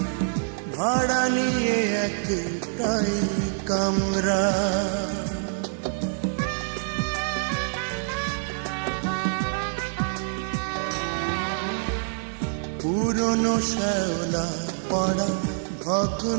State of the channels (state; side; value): silent; left; digital silence